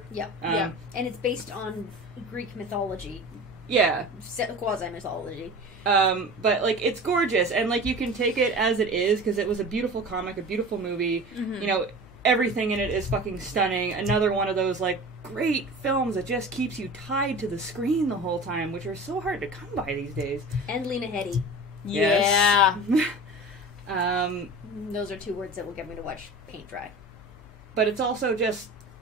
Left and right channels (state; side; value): noise; left; hum, 23 dB below the sound